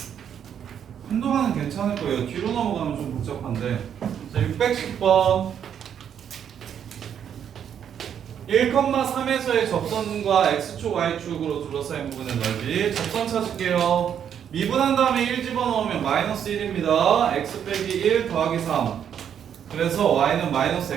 한동안은 괜찮을 거예요. 뒤로 넘어가면 좀 복잡한데 자, 610번 1,3에서의 접선과 x축, y축으로 둘러싸인 부분의 넓이 접선 찾을게요. 미분한 다음에 1 집어넣으면 마이너스 1입니다. x 빼기 1 더하기 3 그래서 y는 마이너스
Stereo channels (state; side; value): quieter; left; 8.7 dB